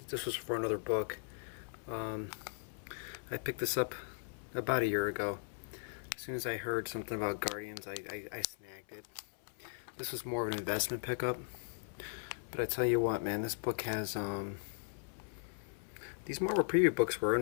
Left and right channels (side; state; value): right; silent; 52 dB below the other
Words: was for another book. I picked this up about a year ago. As soon as I heard something about Guardians, I snagged it. This was more of an investment pickup. But I tell you what, man, this book has these Marvel Preview books were